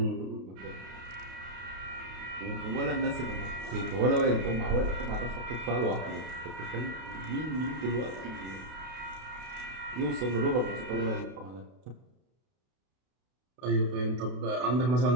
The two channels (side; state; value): left; late; 32 ms